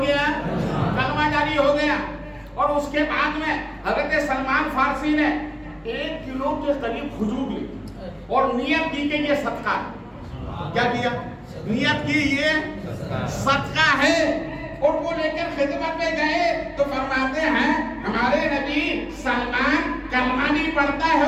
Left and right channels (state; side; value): identical; both; correlation 1.00